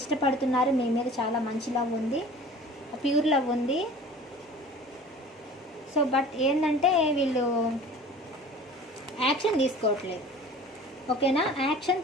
మీ మీద చాలా మంచి లవ్ ఉంది, ప్యూర్ లవ్ ఉంది. సో బట్ ఏంటంటే వీళ్ళు యాక్షన్ తీసుకోవట్లేదు. ఓకేనా, యాక్షన్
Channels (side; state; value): both; normal; correlation 0.43